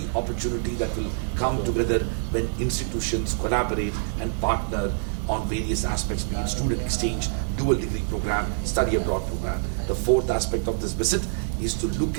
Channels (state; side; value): silent; left; 61 dB below the other